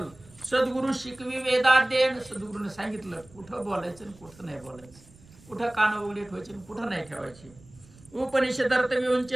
सद्गुरु शिकवी वेदाध्ययन. सद्गुरूने सांगितलं कुठं बोलायचं आणि कुठं नाही बोलायचं, कुठं कान उघडे ठेवायचे आणि कुठं नाही ठेवायचे. उपनिषदार्थ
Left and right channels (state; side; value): noise; right; rumble, 25 dB below the sound